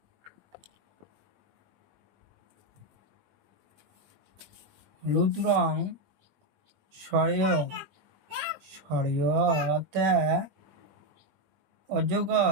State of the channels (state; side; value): late; left; 21 ms